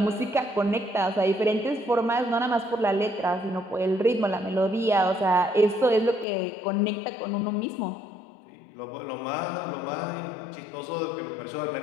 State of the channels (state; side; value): drops out; right; at 6.2 s